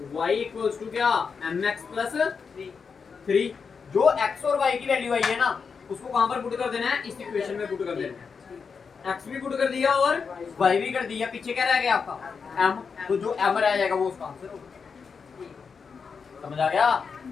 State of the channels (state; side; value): quieter; right; 5.6 dB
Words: y इक्वल्स टू क्या, mx प्लस 3। जो x और y की वैल्यू आई है ना, उसको कहां पर पुट कर देना है, इस इक्वेशन में पुट कर देना है। x भी पुट कर दिया और y भी कर दिया, पीछे क्या रह गया आपका, m। तो जो m रह जाएगा वो उसका आंसर होगा। समझ आ गया?